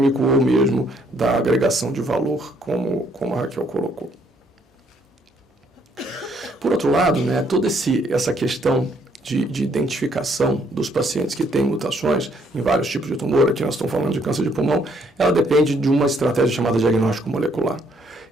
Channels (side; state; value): both; normal; correlation 0.68